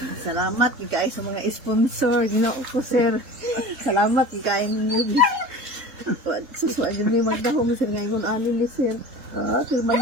Salamat kay sa mga sponsor, Ginoo ko sir. Salamat kay ninyo. Susuan din yung magdahong sir ngayon alin ni sir. Sir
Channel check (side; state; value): left; late; 3.7 ms